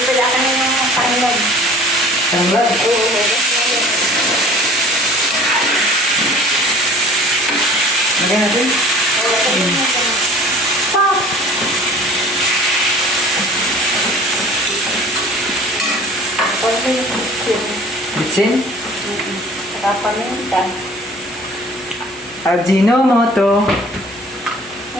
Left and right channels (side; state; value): both; normal; correlation 0.47